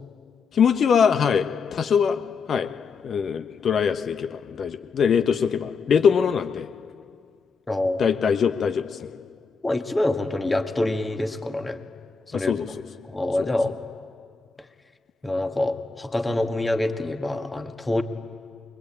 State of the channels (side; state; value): right; quieter; 4.9 dB